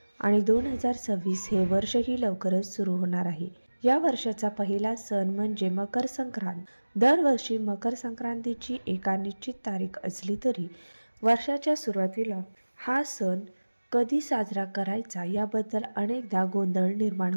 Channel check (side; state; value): both; inverted; correlation -1.00